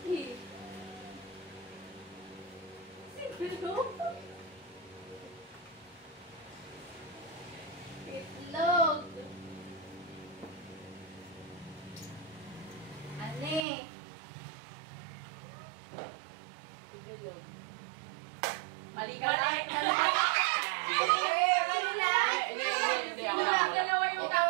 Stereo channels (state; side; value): drops out; left; at 13.6 s